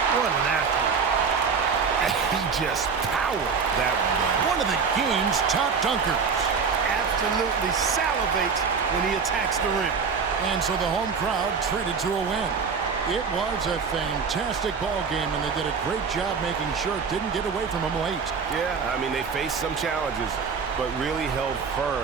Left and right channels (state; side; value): quieter; left; 5.6 dB